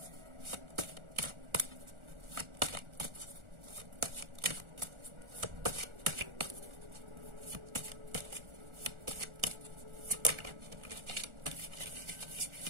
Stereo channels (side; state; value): left; late; 1.4 ms